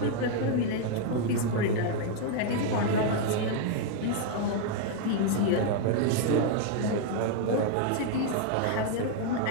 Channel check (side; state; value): both; different; correlation 0.00